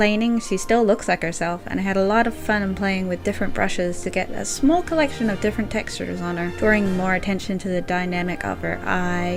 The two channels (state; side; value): identical; both; correlation 1.00